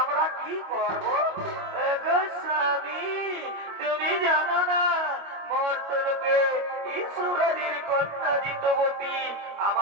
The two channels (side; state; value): left; late; 25 ms